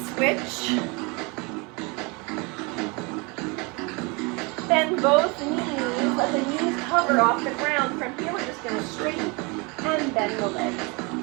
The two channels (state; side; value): quieter; left; 28.8 dB